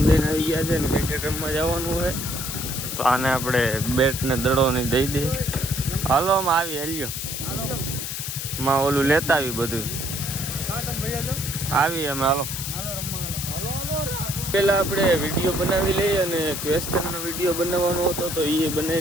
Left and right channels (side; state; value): left; noise; hiss, 5 dB below the sound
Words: દઈને આવી ગયા છે ને ક્રિકેટ રમવા જવાનું હોય, તો આને આપણે બેટ ને દડો ને દઈ દઈએ. હાલો આમાં આવી હેલ્યો માં ઓલું લેતા આવી બધું આવી અમે. હાલો પેલા આપણે વિડીયો બનાવી લઈએ અને ક્વેશ્ચનનો વિડીયો બનાવવાનો હતો તો એ